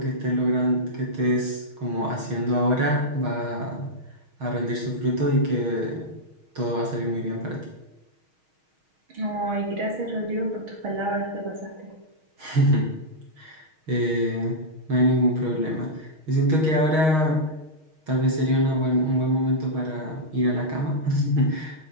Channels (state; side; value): late; left; 6.4 ms